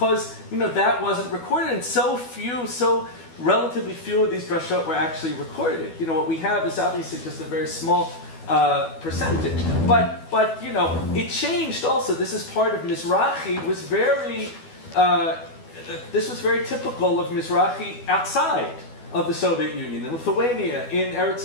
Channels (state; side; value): late; right; 12 ms